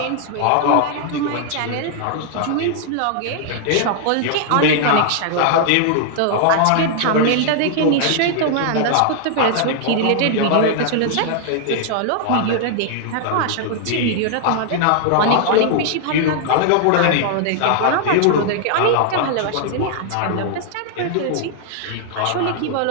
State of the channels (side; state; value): both; different; correlation -0.01